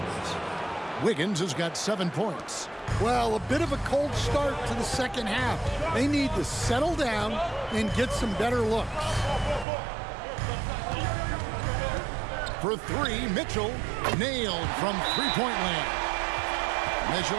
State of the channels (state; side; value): drops out; left; at 9.7 s